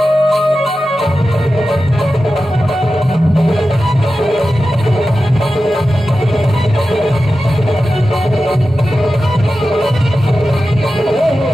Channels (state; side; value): normal; both; correlation 0.93